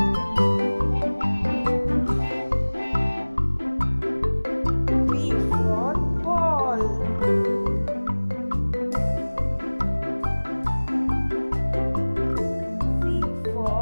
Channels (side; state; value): both; inverted; correlation -1.00